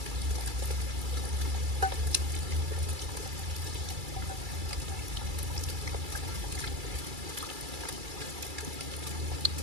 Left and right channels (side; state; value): left; late; 2.3 ms